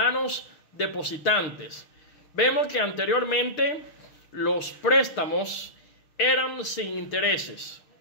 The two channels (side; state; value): right; late; 6.6 ms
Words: depositantes. Vemos que anteriormente los préstamos eran sin intereses.